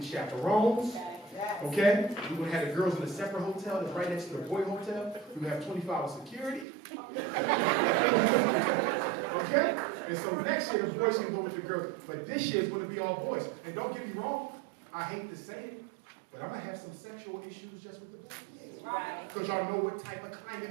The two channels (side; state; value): left; drops out; at 6.7 s